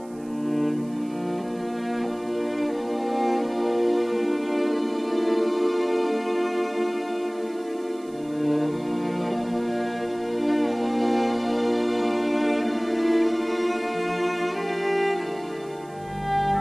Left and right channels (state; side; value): noise; right; hiss, 27 dB below the sound